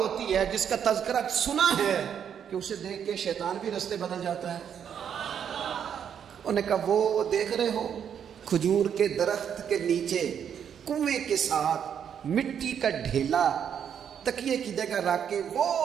ہے، جس کا تذکرہ سنا ہے کہ اسے دیکھ کے شیطان بھی رستے بدل جاتا ہے؟ انہوں نے کہا وہ دیکھ رہے ہو کھجور کے درخت کے نیچے کنویں کے ساتھ مٹی کا ڈھیلا تکیے کی جگہ رکھ کے وہ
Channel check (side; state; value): left; quieter; 8.4 dB